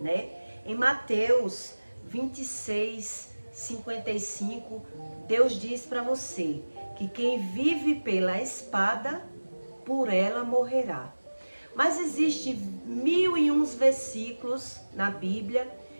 né? Em Mateus 26, 55, Deus diz para você que quem vive pela espada, por ela morrerá. Mas existe 1001 versículos na Bíblia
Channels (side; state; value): both; inverted; correlation -1.00